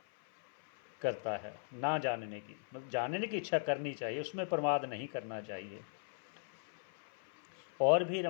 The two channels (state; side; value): silent; right; 52 dB below the other